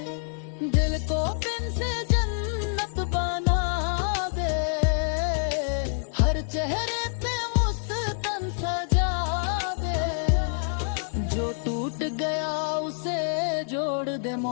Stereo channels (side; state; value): right; silent; 60 dB below the other